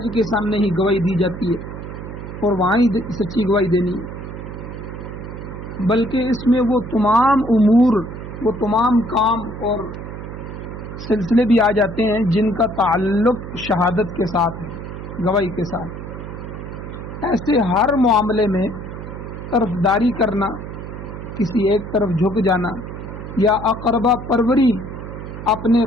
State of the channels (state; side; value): noise; right; hum, 9 dB below the sound